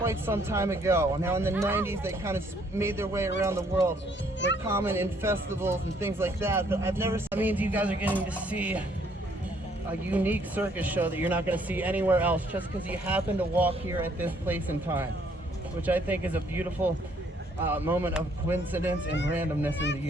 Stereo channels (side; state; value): both; normal; correlation 0.66